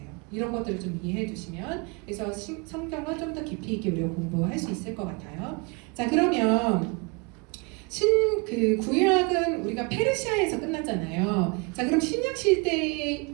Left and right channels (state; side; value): quieter; left; 30.6 dB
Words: 이런 것들을 좀 이해해 두시면, 그래서 성경을 좀 더 깊이 있게 우리가 공부할 수 있을 것 같아요. 자, 그러면 구약은 우리가 페르시아에서 끝났잖아요. 자, 그럼 신약 시대에